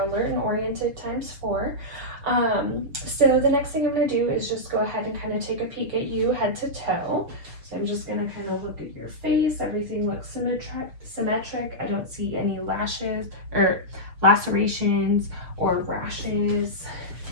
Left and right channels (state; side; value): late; left; 6.4 ms